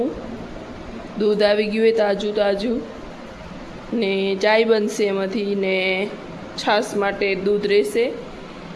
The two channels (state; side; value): identical; both; correlation 1.00